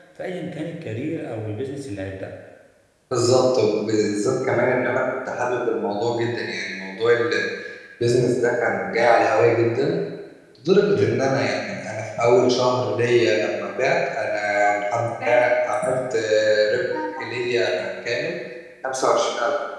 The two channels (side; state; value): both; identical; correlation 1.00